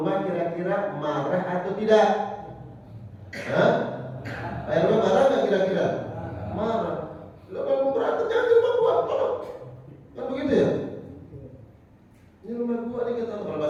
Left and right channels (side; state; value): both; identical; correlation 1.00